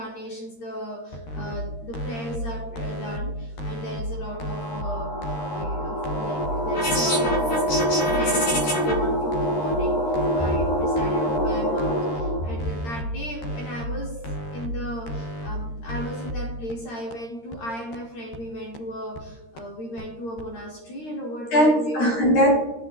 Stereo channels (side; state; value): right; late; 13 ms